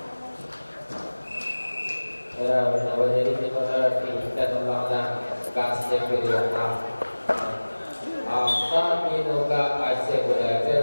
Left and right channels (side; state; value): both; inverted; correlation -1.00